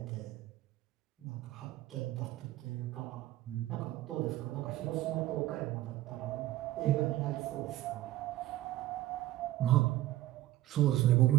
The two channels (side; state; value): left; quieter; 15.2 dB